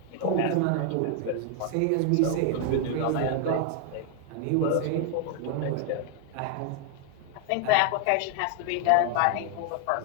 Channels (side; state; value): both; different; correlation 0.00